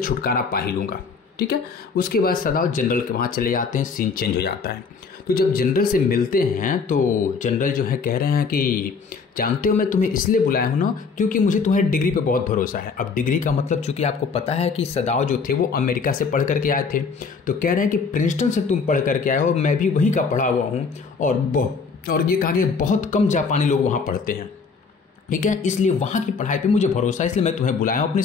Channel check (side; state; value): right; quieter; 5.1 dB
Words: पा ही लूँगा, ठीक है। उसके बाद सदाव जनरल के वहाँ चले जाते हैं, सीन चेंज हो जाता है। तो जब जनरल से मिलते हैं तो जनरल जो है कह रहे हैं कि जानते हो मैं तुम्हें इसलिए बुलाया हूँ ना क्योंकि मुझे तुम्हारी डिग्री पे बहुत भरोसा है। अब डिग्री का मतलब चूंकि आपको पता है कि सदाव जो थे वो अमेरिका से पढ़ करके आए थे, तो कह रहे हैं कि प्रिंसटन से तुम पढ़ करके आए हो, मैं भी वहीं का पढ़ा हुआ हूँ, और ये कहा कि बहुत कम जापानी लोग वहाँ पढ़ते हैं, ठीक है, इसलिए वहाँ की पढ़ाई पर मुझे भरोसा है, इसलिए मैं तुम्हें बुलाया हूँ अपनी